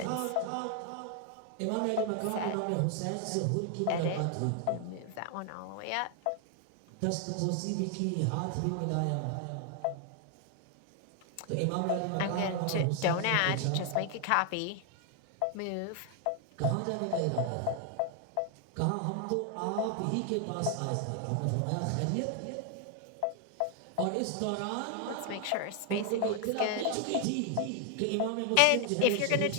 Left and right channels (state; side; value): different; both; correlation 0.00